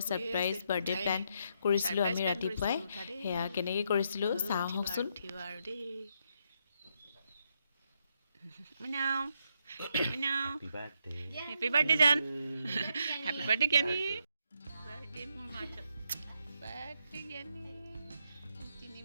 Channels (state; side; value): inverted; both; correlation -0.78